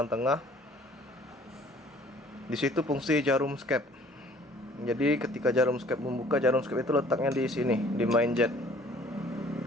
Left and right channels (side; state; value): both; normal; correlation 0.54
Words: tengah, di situ fungsi jarum skep. Jadi ketika jarum skep membuka, jarum skep itu letaknya di sini, di main jet.